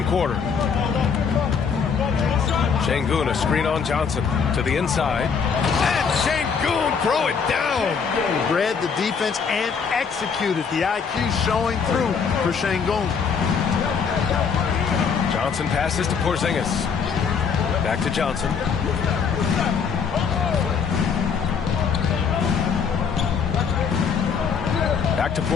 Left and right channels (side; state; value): right; quieter; 6.2 dB